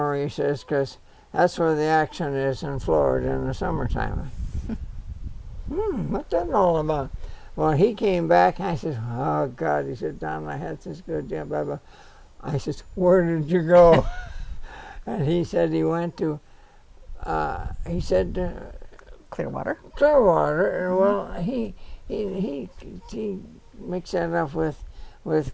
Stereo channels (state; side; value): identical; both; correlation 1.00